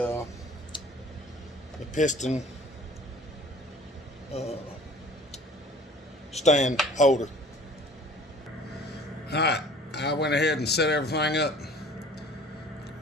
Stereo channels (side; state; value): both; normal; correlation 0.48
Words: piston stand holder. Alright, I went ahead and set everything up,